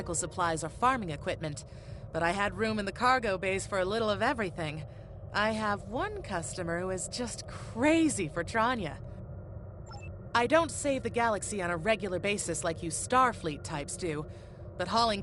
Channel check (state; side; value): identical; both; correlation 1.00